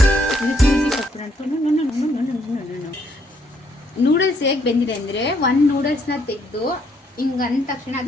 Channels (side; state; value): both; normal; correlation 0.70